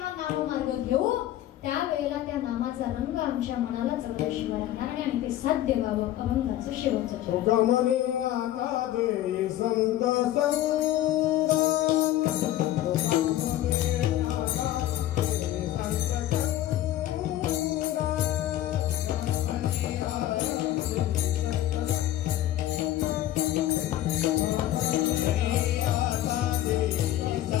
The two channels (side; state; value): right; quieter; 13.5 dB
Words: नाममार्ग घेऊ त्यावेळेला त्या नामाचा रंग आमच्या मनाला चढल्याशिवाय राहणार नाही आणि ते साध्य व्हावं. अभंगाचं शेवटचं संत